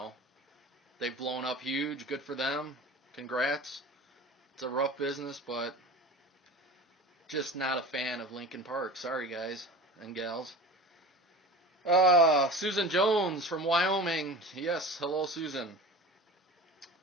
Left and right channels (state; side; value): normal; both; correlation 0.35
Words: they've blown up huge. Good for them. Congrats. It's a rough business, but just not a fan of Linkin Park. Sorry, guys and gals. Susan Jones from Wyoming. Yes, hello, Susan.